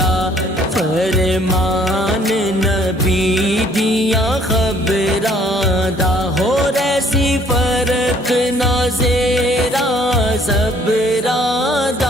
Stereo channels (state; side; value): normal; both; correlation 0.60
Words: فرمان نبی دیا خبراں دا ہو ریسی فرق نہ زیرا زبراں